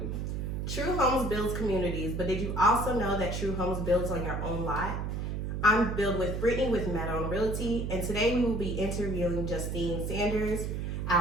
True Homes builds communities, but did you also know that True Homes builds on your own lot? I'm Build with Brittany with Madon Realty, and today we will be interviewing Justine Sanders,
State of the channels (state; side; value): noise; right; hum, 3 dB below the sound